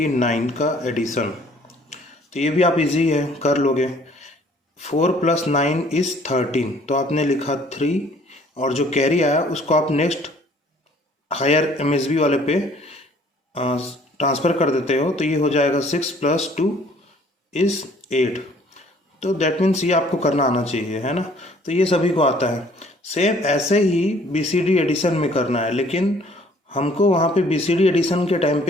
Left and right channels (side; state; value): both; normal; correlation 0.57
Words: का एडिशन। तो ये भी आप इजी है, कर लोगे। 4 प्लस 9 इज़ 13, तो आपने लिखा 3 और जो कैरी आया उसको आप नेक्स्ट हायर एमएसबी वाले पे ट्रांसफ़र कर देते हो। तो ये हो जाएगा 6 प्लस 2 इज़ 8। तो दैट मीन्स ये आपको करना आना चाहिए, है ना। तो ये सभी को आता है। सेम ऐसे ही बीसीडी एडिशन में करना है, लेकिन हमको वहाँ पे बीसीडी एडिशन के टाइम